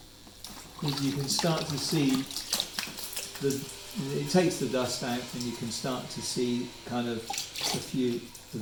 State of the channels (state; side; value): identical; both; correlation 1.00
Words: is you can start to see it takes the dust out, and you can start to see kind of a few of